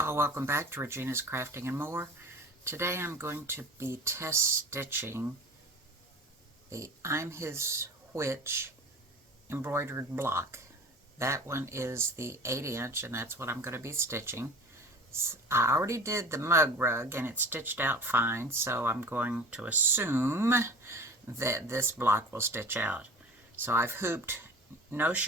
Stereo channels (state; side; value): normal; both; correlation 0.40